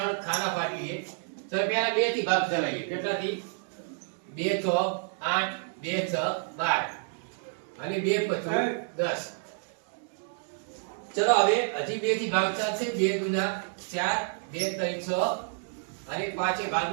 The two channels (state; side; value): silent; left; 58 dB below the other